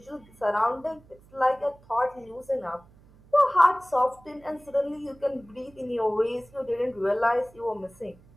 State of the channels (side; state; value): right; noise; hum, 26 dB below the sound